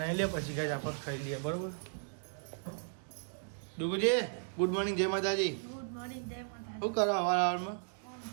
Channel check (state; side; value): silent; left; digital silence